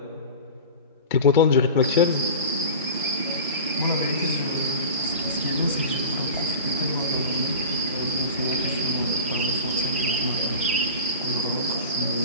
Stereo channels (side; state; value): both; inverted; correlation -0.33